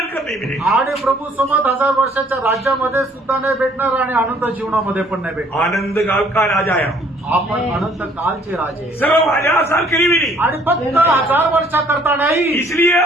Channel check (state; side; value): normal; both; correlation 0.60